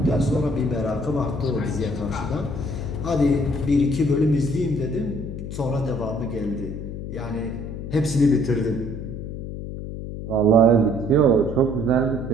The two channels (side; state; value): left; noise; hum, 7 dB below the sound